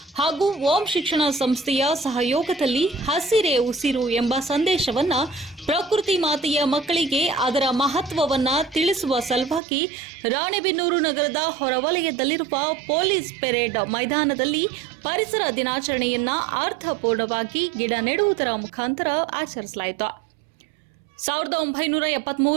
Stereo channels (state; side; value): drops out; left; at 9.6 s